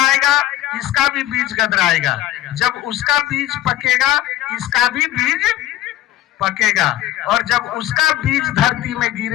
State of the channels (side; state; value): right; quieter; 14.3 dB